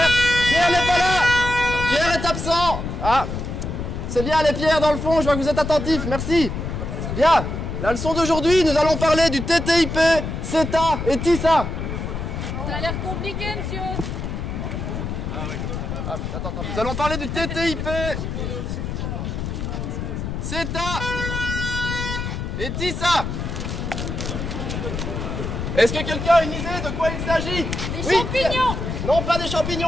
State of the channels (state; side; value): noise; left; rumble, 4 dB below the sound